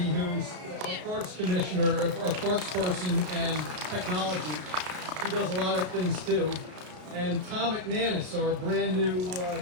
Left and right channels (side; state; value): left; late; 33 ms